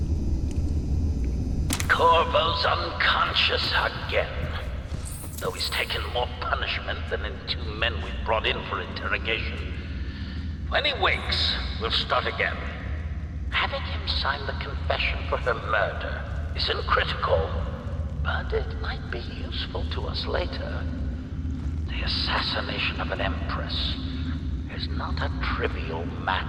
Corvo's unconscious again. Though he's taken more punishment than in 2 men we brought in for interrogation. When he wakes, we'll start again. Having him sign the confession for her murder isn't critical, but it might be useful to us later. The assassination of an empress is not a trivial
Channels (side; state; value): both; identical; correlation 1.00